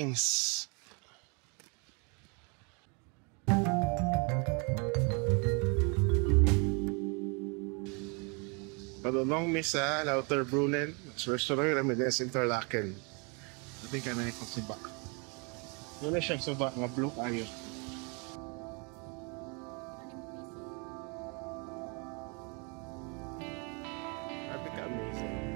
Padulong mi sa Lauterbrunnen. Restaurant kami din sa Interlaken. Sabi ka na ikong suba. Wala siyang suba, nga blue kayo. Sabi ka amazing.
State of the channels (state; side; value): quieter; left; 33.3 dB